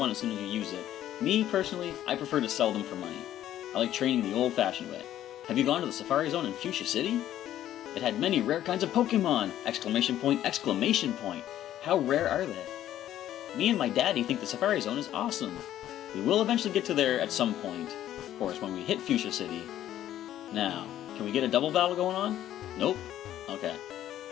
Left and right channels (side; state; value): right; quieter; 12.2 dB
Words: as soon as you use it. Me, personally, I prefer to sell them for money. I like training the old-fashioned way. Have you gone to the Safari Zone in Fuchsia City? It had many rare kinds of Pokemon! Exclamation point, exclamation point. How rare are they? Me and my daddy think the Safari Zone is awesome. We will eventually get to there at some point. Of course, when we hit Fuchsia City. Now, can we get a double battle going on? Nope. Okay.